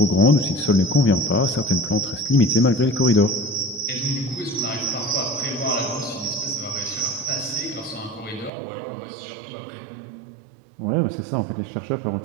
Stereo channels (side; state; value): left; drops out; at 8.5 s